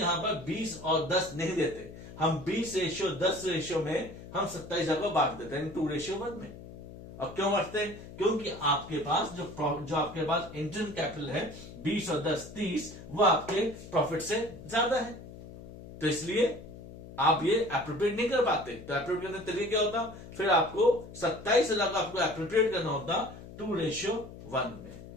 पर 20 और 10 नहीं देते, हम 20:10 रेशियो में हम 27,000 को बांट देते हैं 2:1 में। अब क्यों बांटते हैं, क्योंकि आपके पास जो आपके पास इंटरेस्ट कैपिटल है 20 और 10 30, वो आपके प्रॉफिट से ज्यादा है, तो इसलिए आप ये एप्रोप्रिएट नहीं कर पाते। तो एप्रोप्रिएट करने का तरीका क्या होता, फिर आपको 27,000 को आपको एप्रोप्रिएट करना होता 2:1 में,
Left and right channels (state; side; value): noise; left; hum, 15 dB below the sound